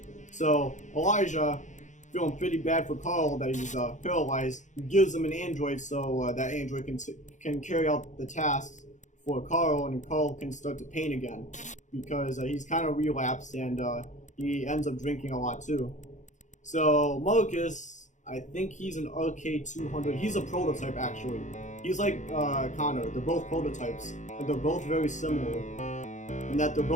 So Elijah, feeling pretty bad for Carl that he's paralyzed, gives him an android so that android can carry out the tasks for Carl, and Carl can start to paint again because he's kind of relapsed and he ends up drinking a lot too. So Marcus, I think he's an RK200. He's a prototype actually. He's like Connor. They're both prototypes, and they're both very similar in that they're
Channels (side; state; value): right; late; 0.35 ms